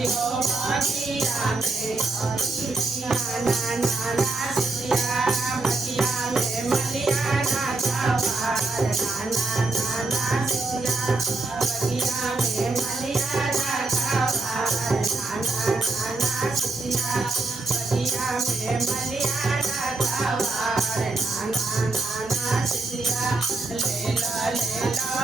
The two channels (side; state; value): left; quieter; 3.4 dB